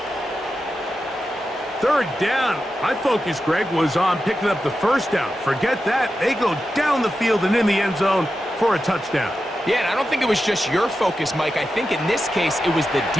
Third down. My focus, Greg, was on picking up the first down. Forget that. They go down the field and in the end zone for a touchdown. Yeah, and I don't think it was just your focus, Mike. I think in this case, it was the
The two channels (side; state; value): both; normal; correlation 0.90